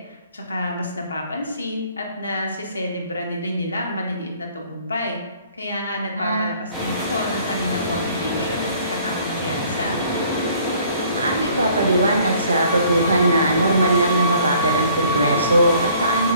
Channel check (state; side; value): inverted; both; correlation -0.58